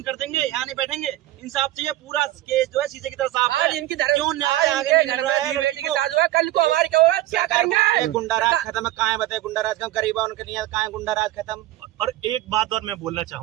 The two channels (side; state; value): left; quieter; 15.3 dB